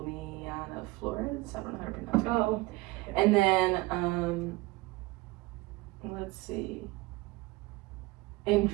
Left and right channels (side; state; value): left; quieter; 21.3 dB